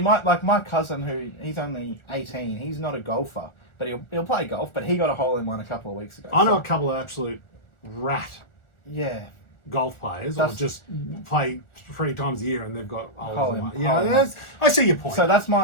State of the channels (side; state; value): right; late; 1.4 ms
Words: cousin, he's only 18, he's not a golfer, but he'll play golf, but he got a hole-in-one a couple of weeks ago. I know a couple of absolute rat golf players, or just play 3 times a year and they've got a hole-in-one. Yeah, I see your point. So that's